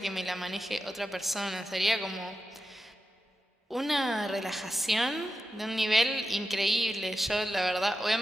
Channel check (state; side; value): normal; both; correlation 0.91